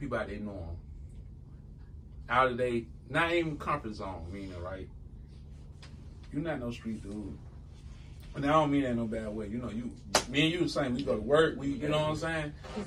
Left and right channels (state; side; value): identical; both; correlation 1.00